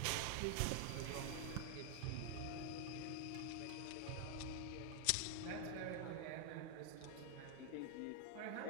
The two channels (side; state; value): both; different; correlation 0.00